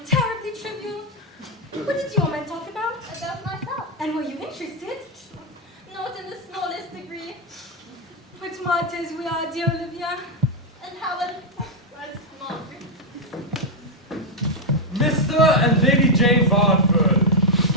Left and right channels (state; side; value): normal; both; correlation 0.00